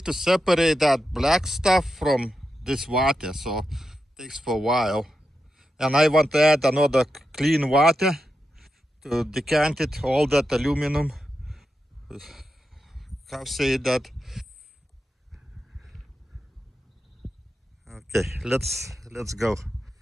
separate that black stuff from this water. So takes for a while. And I want to add another clean water to decant it, all that aluminum. How say that? Okay, let's go.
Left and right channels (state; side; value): normal; both; correlation 0.88